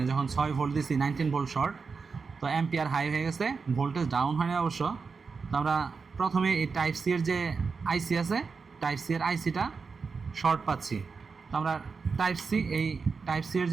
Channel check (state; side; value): quieter; left; 5.0 dB